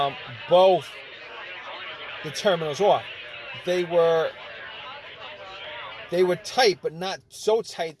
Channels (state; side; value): identical; both; correlation 1.00